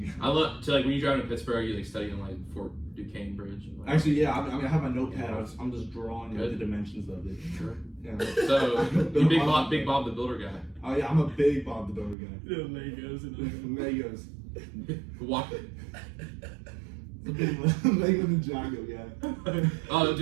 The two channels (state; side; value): drops out; left; at 12.2 s